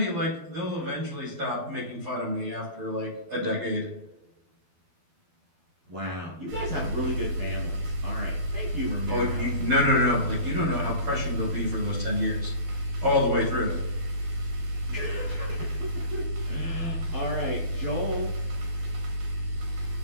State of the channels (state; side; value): late; left; 12 ms